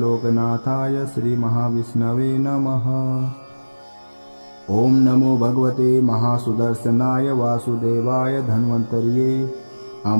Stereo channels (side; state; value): both; inverted; correlation -1.00